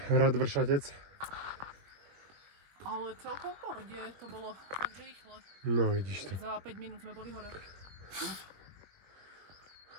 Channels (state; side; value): late; left; 21 ms